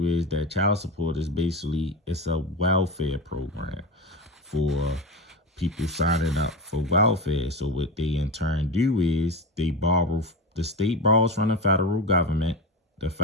is that child support is basically, it's a welfare program for people signing up for welfare. So what they in turn do is they borrow, the state borrows from the federal government. The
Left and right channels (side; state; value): both; normal; correlation 0.22